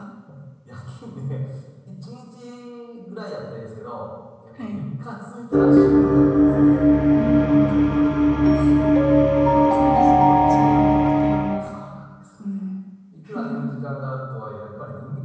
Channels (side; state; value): both; identical; correlation 1.00